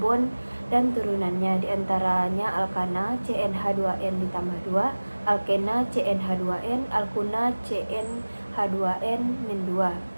dan turunannya, diantaranya alkana CnH2n ditambah 2, alkena CnH2n, alkuna CnH2n-2.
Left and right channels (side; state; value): both; inverted; correlation -1.00